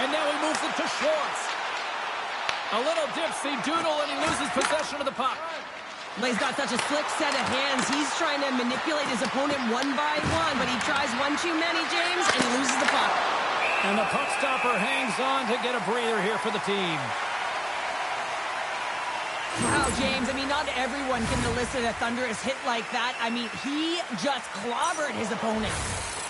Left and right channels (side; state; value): both; identical; correlation 1.00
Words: now he moves it to Schwartz. A little dipsy doodle, and he loses possession of the puck. Well, he's got such a slick set of hands. He's trying to manipulate his opponent one by one, but he tries one too many, James, and he loses the puck. And the puck stopper hangs on to get a breather here for the team. Wow, James, I mean, not everyone can elicit a thunderous hit like that. I mean, he just clobbered his opponent.